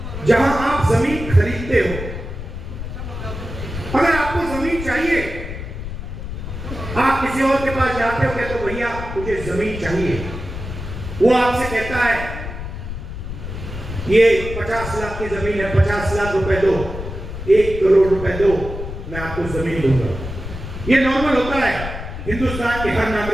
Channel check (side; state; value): left; noise; rumble, 8 dB below the sound